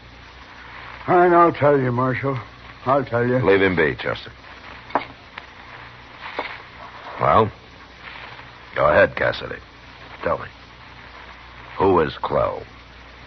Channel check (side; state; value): both; identical; correlation 1.00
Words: I'll tell you, Marshal. I'll tell you. Leave him be, Chester. Well, go ahead, Cassidy. Tell me. Who is Clell?